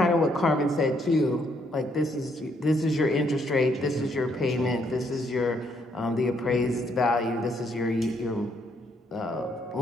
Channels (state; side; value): normal; both; correlation 0.72